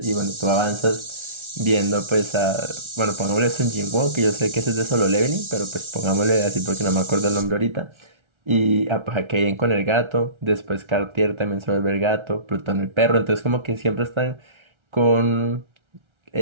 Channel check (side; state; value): left; late; 1.3 ms